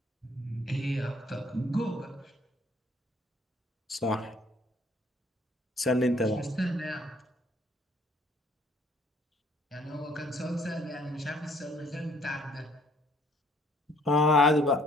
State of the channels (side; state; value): both; normal; correlation 0.61